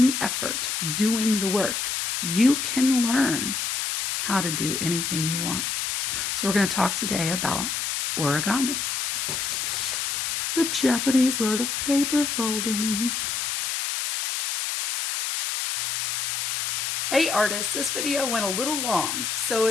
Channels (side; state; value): left; noise; hiss, 1 dB below the sound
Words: the effort, doing the work. You can learn how to do anything you want. So we're going to talk today about origami, the Japanese art of paper folding. Hey artists, this video went a little long, so